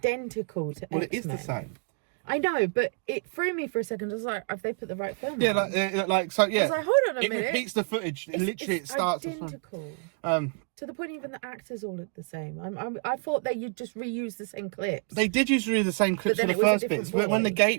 to X-Men. It is the same. I know, but it threw me for a second. I was like, have they put the right film on? I was like, hold on a minute. It repeats the footage. It starts identical. To the point even the actors all look the same. I thought that you'd just reuse the same clips. They did use the same clips for the first bits. When the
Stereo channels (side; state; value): left; quieter; 39.8 dB